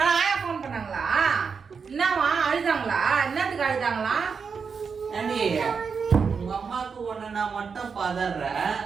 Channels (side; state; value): left; quieter; 5.8 dB